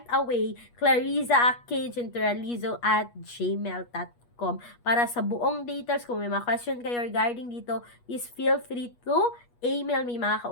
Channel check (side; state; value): right; late; 8.3 ms